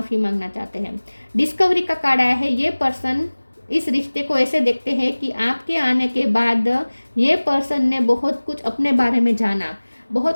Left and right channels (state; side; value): inverted; both; correlation -1.00